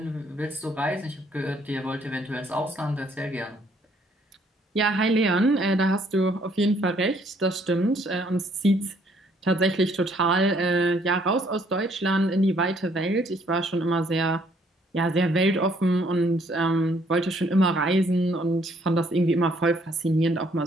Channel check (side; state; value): both; normal; correlation 0.65